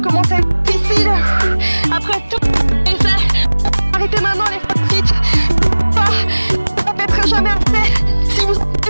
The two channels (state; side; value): inverted; both; correlation -1.00